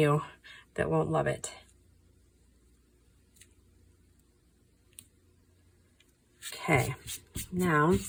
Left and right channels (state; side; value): identical; both; correlation 1.00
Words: that won't love it. Okay, now